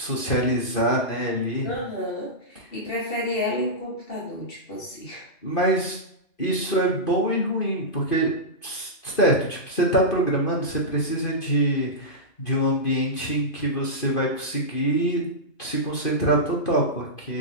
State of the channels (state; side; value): late; right; 2.5 ms